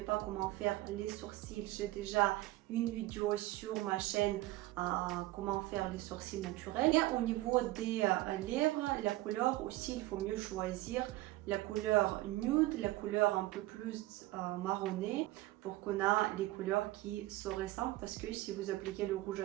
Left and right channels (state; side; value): quieter; left; 17.8 dB